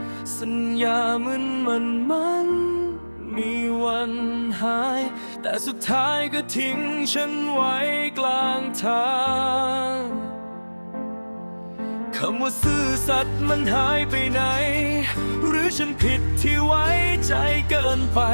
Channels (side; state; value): both; inverted; correlation -1.00